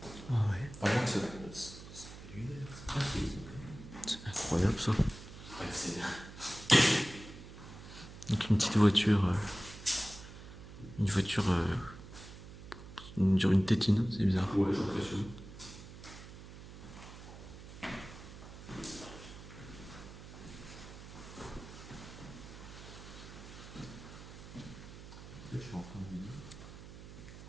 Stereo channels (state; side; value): noise; right; hum, 14 dB below the sound